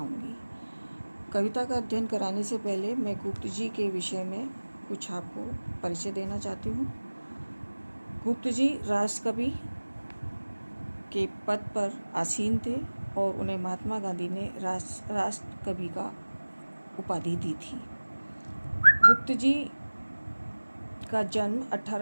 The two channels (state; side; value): inverted; both; correlation -1.00